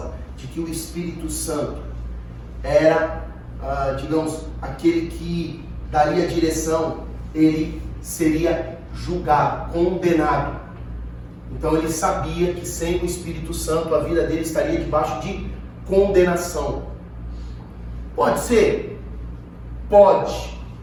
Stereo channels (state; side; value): identical; both; correlation 1.00